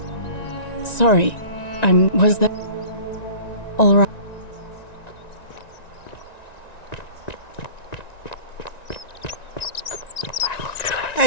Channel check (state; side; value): late; right; 1.9 ms